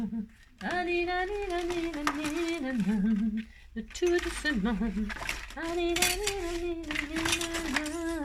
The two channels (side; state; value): both; identical; correlation 1.00